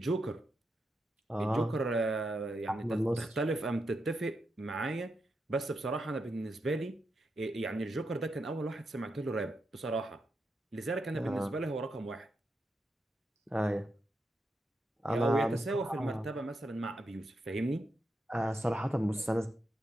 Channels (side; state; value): both; normal; correlation 0.85